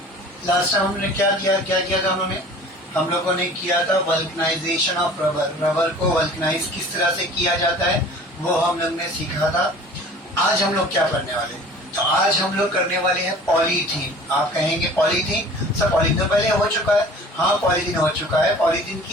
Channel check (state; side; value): normal; both; correlation 0.45